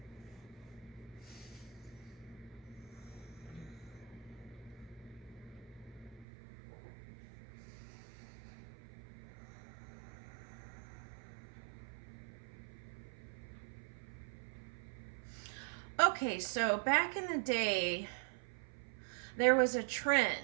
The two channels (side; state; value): left; drops out; at 6.2 s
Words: Okay, so back in the day, there was a